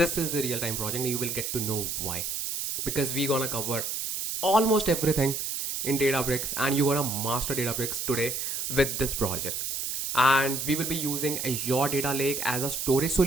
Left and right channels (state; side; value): noise; right; hiss, 3 dB below the sound